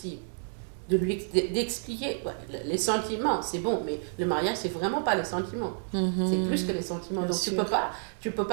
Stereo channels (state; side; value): silent; left; digital silence